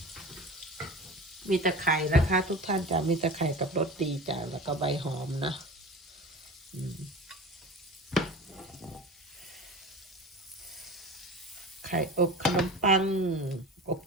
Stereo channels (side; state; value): both; normal; correlation 0.34